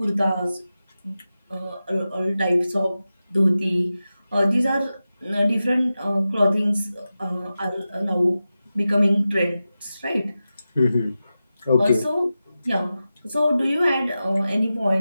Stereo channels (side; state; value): both; inverted; correlation -0.93